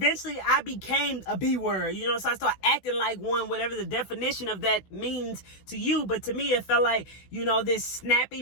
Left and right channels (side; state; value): right; late; 16 ms